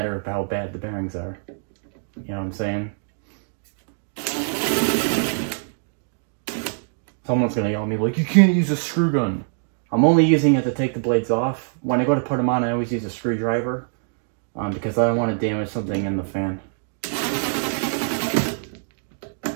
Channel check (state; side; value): silent; left; digital silence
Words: how bad the bearings are. You know what I'm saying? Someone's gonna yell at me like, you can't use a screw gun. I'm only using it to take the blades off. When I go to put them on, I always use a screwdriver because I don't want to damage something in the fan. It